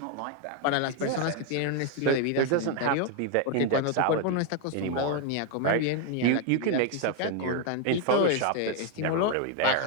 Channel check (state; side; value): different; both; correlation 0.01